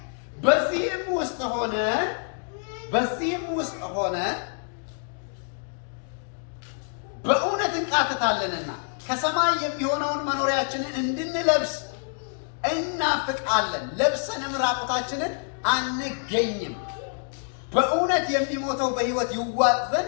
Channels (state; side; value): silent; right; 61 dB below the other